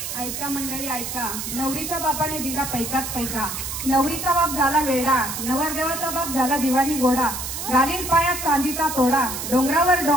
ऐका मंडळी ऐका, नवरीच्या बापाने दिला पैकाच पैका. नवरीचा बाप झाला वेडा, नवरदेवाचा बाप झाला दिवाणी गोडा. घालील पायात चांदीचा तोडा, डोंगरावर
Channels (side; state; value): right; noise; hiss, 5 dB below the sound